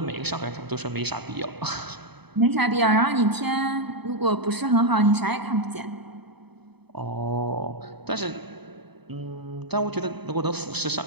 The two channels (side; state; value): left; late; 0.98 ms